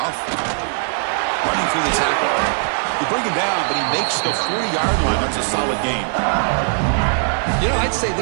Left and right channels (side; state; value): left; silent; 62 dB below the other